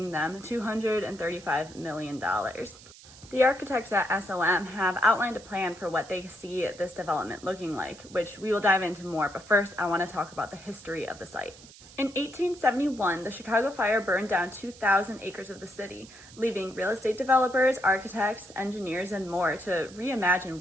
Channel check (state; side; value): noise; right; hiss, 20 dB below the sound